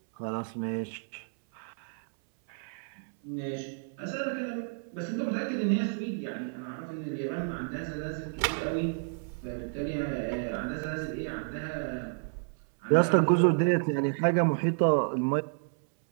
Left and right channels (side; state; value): left; silent; 57 dB below the other